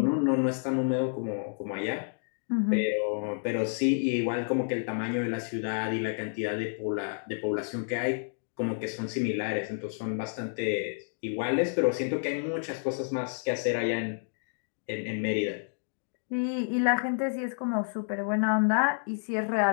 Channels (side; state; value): right; silent; digital silence